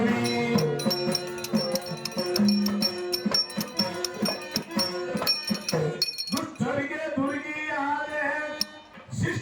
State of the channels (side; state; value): both; identical; correlation 1.00